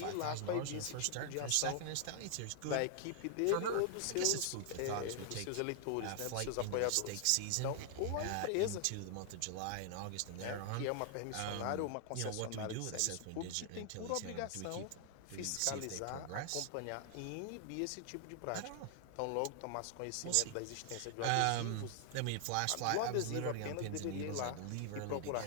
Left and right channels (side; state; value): both; different; correlation 0.00